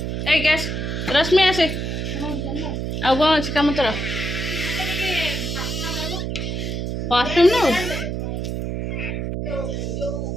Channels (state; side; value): noise; right; hum, 2 dB below the sound